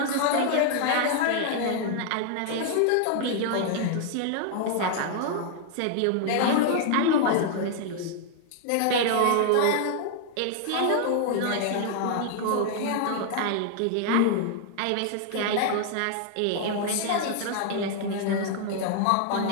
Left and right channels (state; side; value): different; both; correlation 0.00